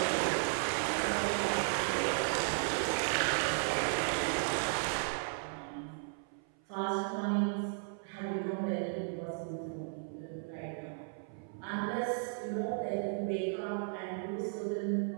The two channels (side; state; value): left; silent; 54 dB below the other